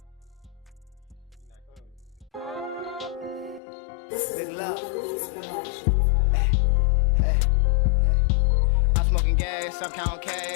Big love. I'm smoking gas, I'm counting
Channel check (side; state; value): right; drops out; at 3.6 s